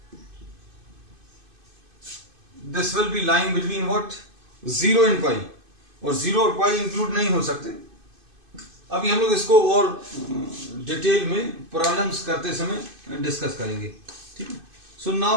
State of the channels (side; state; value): left; late; 2.5 ms